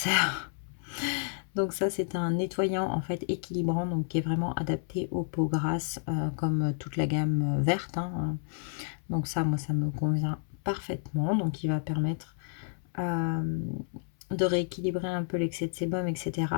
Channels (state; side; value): silent; right; 57 dB below the other